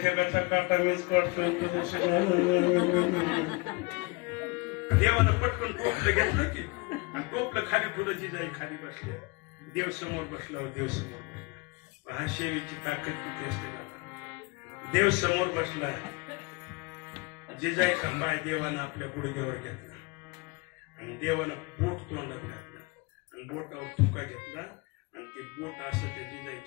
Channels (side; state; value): right; quieter; 26.8 dB